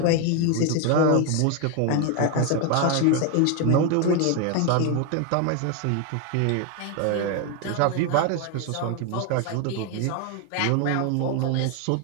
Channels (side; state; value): both; different; correlation 0.01